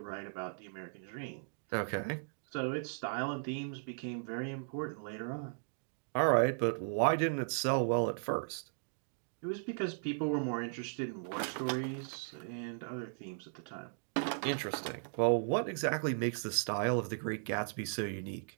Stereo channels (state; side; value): silent; left; digital silence